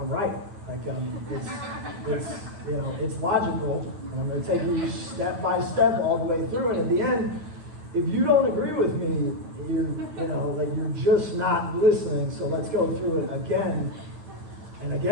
right. Like it's logical, and I'm going to take you step by step all the way through. And at the end, if you don't agree with me, you're just not listening. So let's go through it again and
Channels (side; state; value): left; late; 9.7 ms